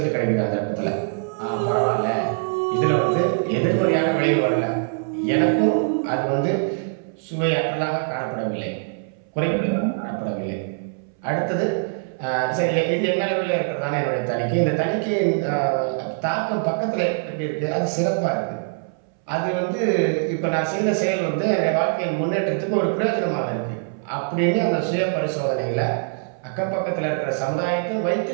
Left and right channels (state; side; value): silent; left; 62 dB below the other